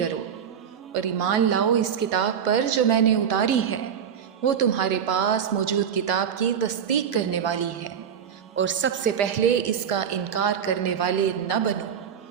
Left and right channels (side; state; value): left; quieter; 8.1 dB